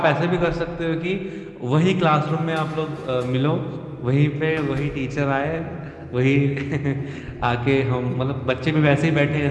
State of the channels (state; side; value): identical; both; correlation 1.00